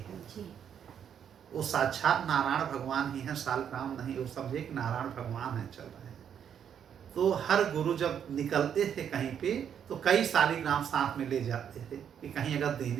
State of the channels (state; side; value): quieter; left; 8.5 dB